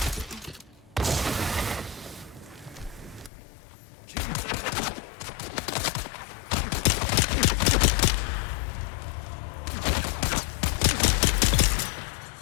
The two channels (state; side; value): drops out; right; at 3.3 s